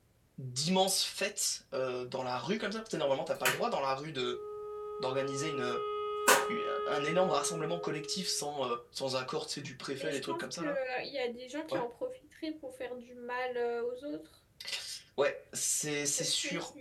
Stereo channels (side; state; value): both; identical; correlation 1.00